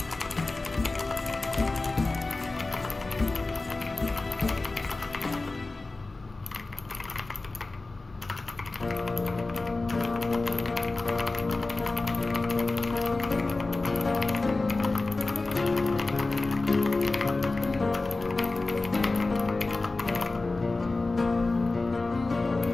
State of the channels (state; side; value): quieter; right; 3.3 dB